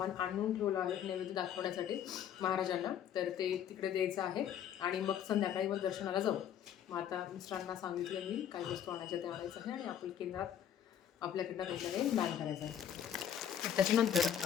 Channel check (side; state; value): right; quieter; 9.5 dB